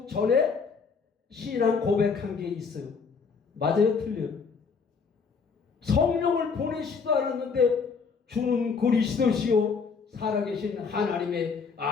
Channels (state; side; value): quieter; right; 5.4 dB